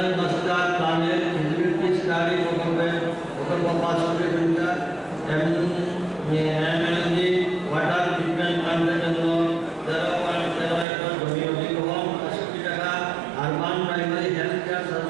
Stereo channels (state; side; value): drops out; left; at 10.9 s